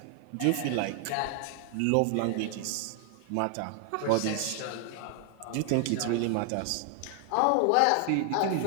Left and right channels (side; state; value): both; different; correlation 0.00